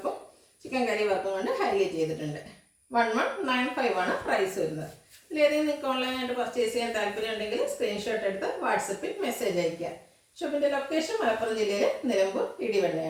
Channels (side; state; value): both; identical; correlation 1.00